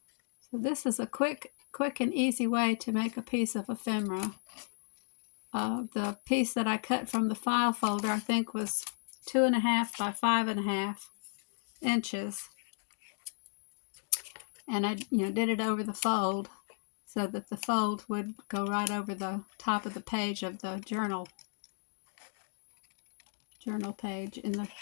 So this is a quick and easy way to make a piece of ephemera. The piece that I cut from the file folder, I think, was 2.5 by 5.5 inches, and I did it over the fold so that the fold would go right over the top of the page of the journal page in the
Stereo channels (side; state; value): right; silent; digital silence